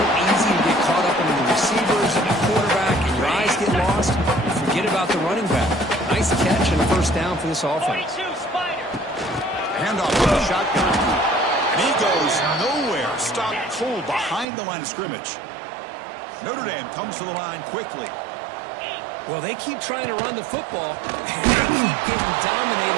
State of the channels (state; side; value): drops out; left; at 14.5 s